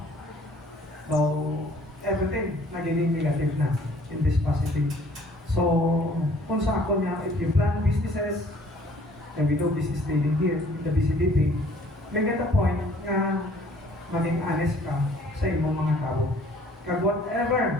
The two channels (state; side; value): normal; both; correlation 0.56